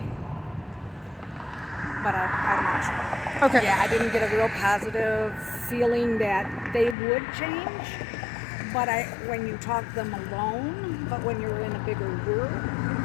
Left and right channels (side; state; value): right; drops out; at 7.0 s